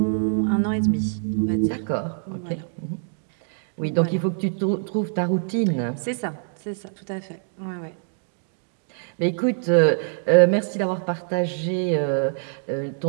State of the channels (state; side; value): silent; left; digital silence